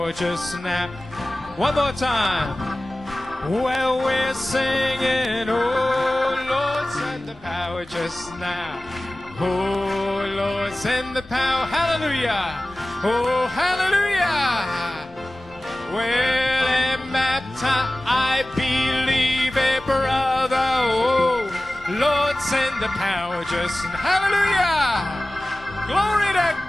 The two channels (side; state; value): both; normal; correlation 0.97